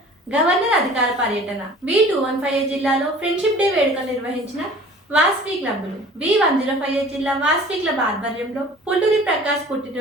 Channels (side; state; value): both; normal; correlation 0.47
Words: గవర్నర్ అధికార పర్యటన. V215 జిల్లాలో ఫ్రెండ్షిప్ డే వేడుకలు నిర్వహించిన వాసవి క్లబ్లు. V105 జిల్లా వాసవి క్లబ్ ఆధ్వర్యంలో పుల్లూరి ప్రకాష్